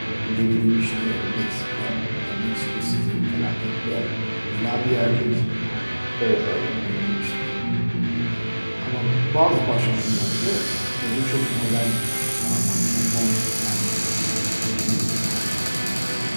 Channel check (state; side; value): inverted; both; correlation -1.00